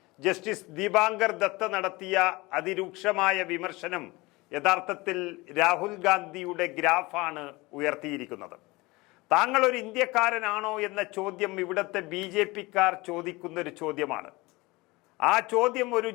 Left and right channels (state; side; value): quieter; right; 22.5 dB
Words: justice Dipankar Datta നടത്തിയ അതിരൂക്ഷമായ വിമർശനം യഥാർത്ഥത്തിൽ രാഹുൽ ഗാന്ധിയുടെ ഗ്രാഫാണ് ഉയർത്തിയിരിക്കുന്നത്. താങ്കൾ ഒരു ഇന്ത്യക്കാരനാണോ എന്ന ചോദ്യം ഇവിടുത്തെ BJP-ക്കാർ ചോദിക്കുന്ന ഒരു ചോദ്യമാണ്. ആ ചോദ്യം ഒരു